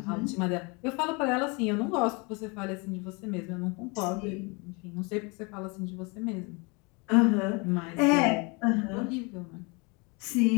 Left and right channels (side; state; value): right; quieter; 29.8 dB